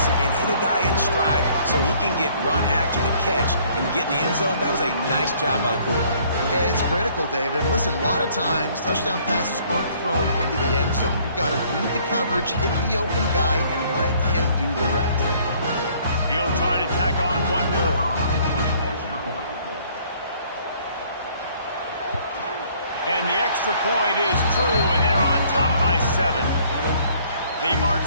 and hit a guy in stride so he can get run after the catch and get in the end zone. That was a nice job by the quarterback. Yeah, it's critical, David. And listen, a lot of times touchdown passes aren't thrown into the end zone. You've got to read the coverage, hit the open guy, and let him do the rest. He'll try to tack on one more. And the extra point is true, and they're on top by 7. They march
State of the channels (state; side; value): inverted; both; correlation -0.60